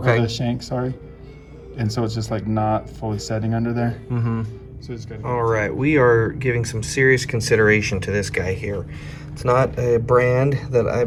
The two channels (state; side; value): identical; both; correlation 1.00